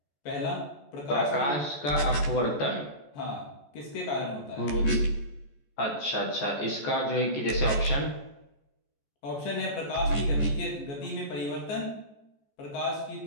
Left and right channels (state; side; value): late; right; 14 ms